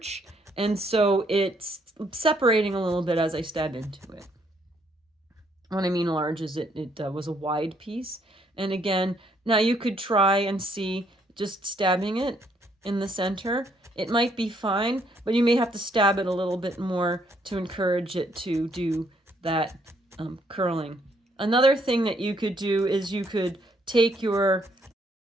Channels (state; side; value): normal; both; correlation 0.70